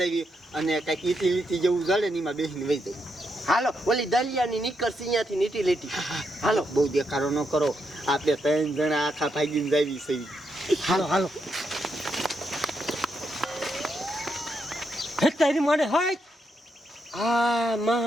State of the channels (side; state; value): both; normal; correlation 0.81